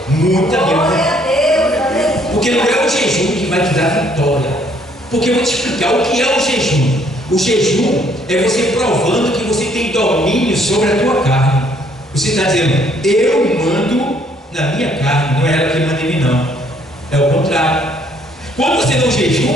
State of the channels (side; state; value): both; normal; correlation 0.65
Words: Muita Glória vitória. a Deus, aleluia. Porque não é o jejum que vai te dar vitória. Porque eu vou te explicar o que é o jejum. O jejum é você provando que você tem domínio sobre a tua carne. Você está dizendo, eu mando na minha carne, não é ela que manda em mim, não. É o contrário. Quando você não